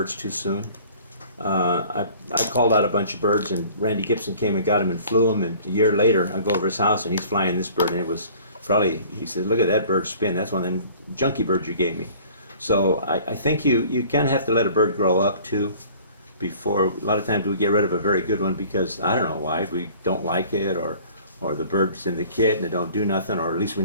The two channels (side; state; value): both; inverted; correlation -0.50